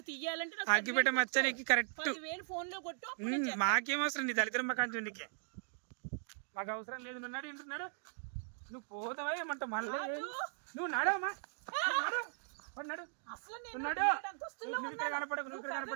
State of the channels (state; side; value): silent; left; digital silence